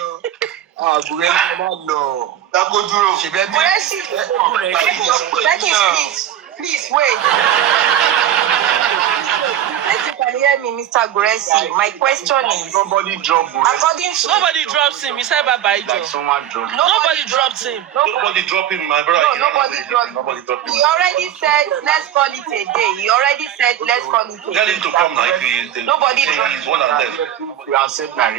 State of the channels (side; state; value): left; quieter; 11.0 dB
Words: Please wait. Let you can hear me, Mr. Guresi. My question is, Nobody dropped according to Nobody drops him. He said bye-bye, Joe. like someone dropped. Nobody dropped him. Nobody dropped him, my brother. No, nobody dropped him. He already said, let's call it a day. He already said, let's call it a day. Tell him to come now if he is. Nobody dropped He's one and left. You accept my